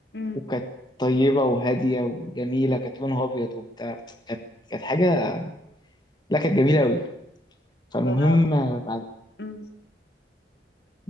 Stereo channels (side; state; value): both; normal; correlation 0.72